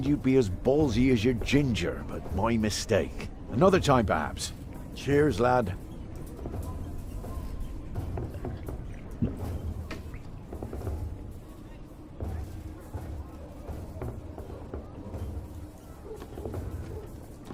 you'd be as ballsy as your ginger, but my mistake. Another time, perhaps. Cheers, lad.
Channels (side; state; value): both; identical; correlation 1.00